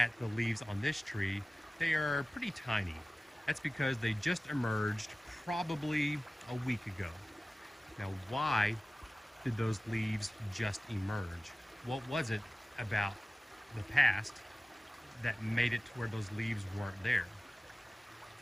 the leaves on this tree, they are pretty tiny. That's because they just emerged probably a week ago. Now, why did those leaves just emerge? What was it about the past that made it to where those leaves weren't there?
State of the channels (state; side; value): normal; both; correlation 0.96